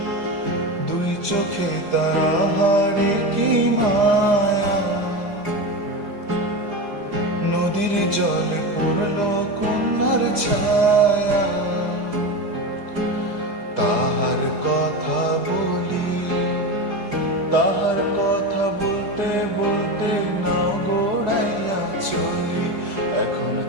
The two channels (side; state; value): left; late; 4.9 ms